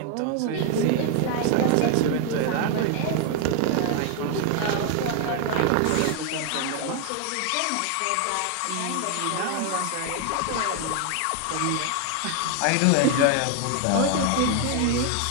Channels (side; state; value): both; different; correlation 0.00